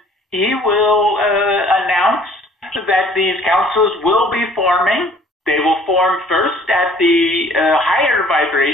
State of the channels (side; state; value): both; normal; correlation 0.55